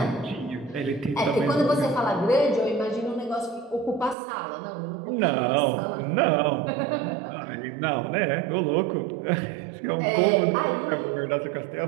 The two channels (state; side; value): drops out; left; at 4.2 s